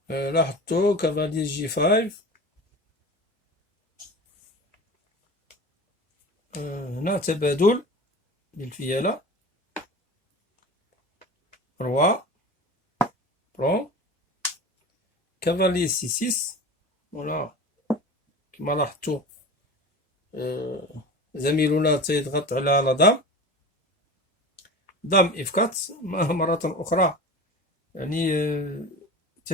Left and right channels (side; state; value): both; normal; correlation 0.33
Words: لاحظتوا كافالي G5. هنا تبادل للفيالة. روا برون كافالي C6. ولا كما لاحظتوا زميلنا تيضغط على لا دام F4 مرة أخرى، يعني